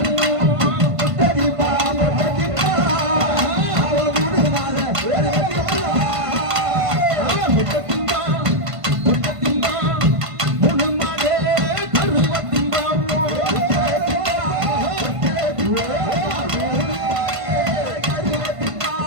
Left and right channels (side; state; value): left; late; 1.5 ms